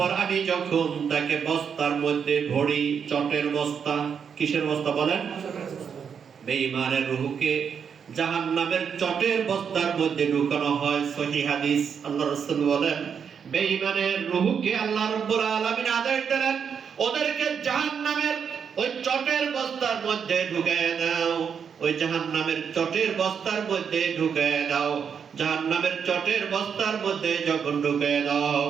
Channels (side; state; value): left; quieter; 7.0 dB